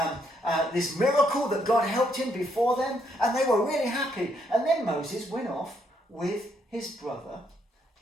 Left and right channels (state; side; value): normal; both; correlation 0.73